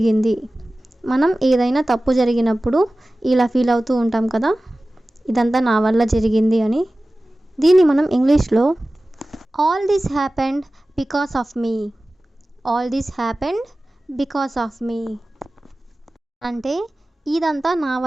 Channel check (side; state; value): both; normal; correlation 0.97